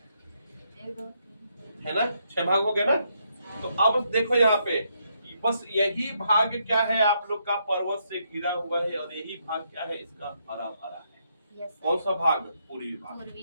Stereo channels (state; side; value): inverted; both; correlation -0.76